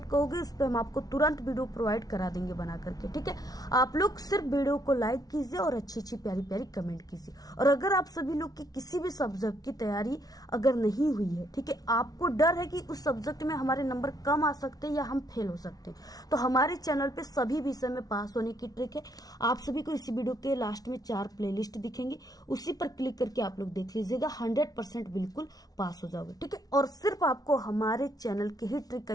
कहोगे उस पर हम आपको तुरंत वीडियो प्रोवाइड करा देंगे बना करके। ठीक है, आप लोग सिर्फ वीडियो को लाइक कीजिए और अच्छी अच्छी प्यारी प्यारी कमेंट कीजिए। और अगर आप सभी लोग की किसी भी सब्जेक्ट की तैयारी अगर नहीं हुई है, ठीक है, आपको डर है कि उस सब्जेक्ट में हमारे नंबर कम आ सकते हैं या हम फेल हो सकते हैं, तो हमारे चैनल पे सभी विषय में पास होने की ट्रिक है। आप सभी को इसी वीडियो के लास्ट में 4 प्लेलिस्ट दिखेंगे, उसी पर क्लिक करके आप लोग देख लीजिएगा, 100% बिल्कुल पास हो जाओगे। ठीक है, और सिर्फ आपको हमारे चैनल के ही ट्रिक का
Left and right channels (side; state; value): right; late; 0.18 ms